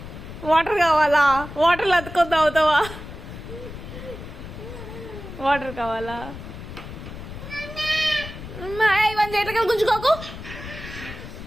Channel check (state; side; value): noise; left; rumble, 12 dB below the sound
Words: వాటర్ కావాలా? వాటర్లో అతుకొని తాగుతావా? వాటర్ కావాలా? ఇవన్నీ చేతగా గుంజుకోకు.